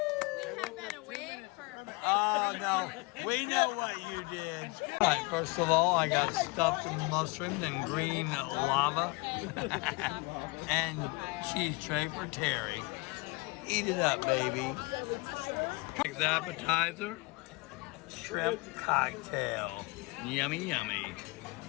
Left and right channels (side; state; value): right; quieter; 26.3 dB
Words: We have been away for. Oh no, we know what you did. All right, first of all, I got stuffed mushrooms and green lava and cheese tray for Terry. Eat it up, baby. Next appetizer, shrimp cocktail. Yummy, yummy.